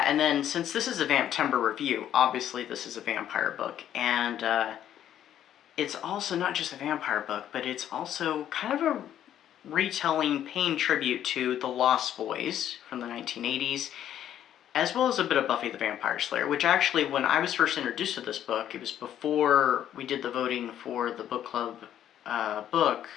and then since this is a Vamptember review, obviously this is a vampire book, and it's also not just a vampire book, but it's also kind of a retelling, paying tribute to The Lost Boys from the 1980s, as well as a bit of Buffy the Vampire Slayer, which actually, when I was first introduced to this book, it was before we did the voting for the book club book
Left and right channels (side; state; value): right; quieter; 10.8 dB